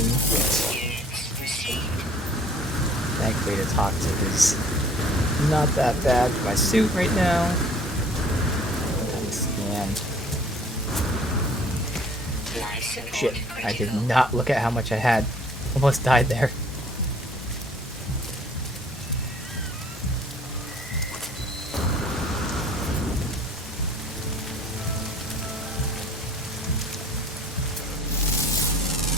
Units received. Thankfully, the toxic is not that bad for my suit right now. Scan. Life support Shit, critical. I did not look at how much I had. Almost died there.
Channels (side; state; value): both; normal; correlation 0.53